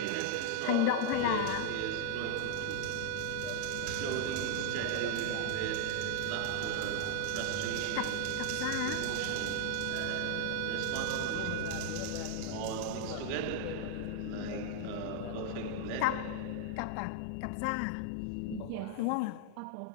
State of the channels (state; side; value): different; both; correlation 0.00